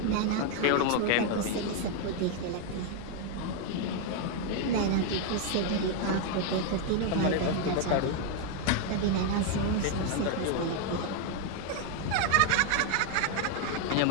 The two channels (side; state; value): both; different; correlation 0.01